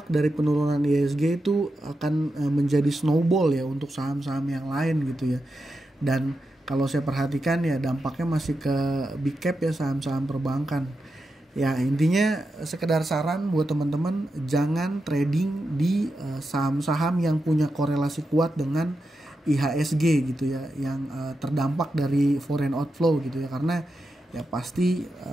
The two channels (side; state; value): both; normal; correlation 0.88